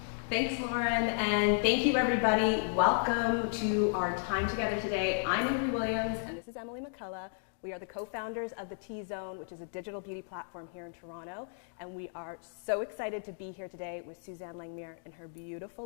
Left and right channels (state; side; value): silent; right; digital silence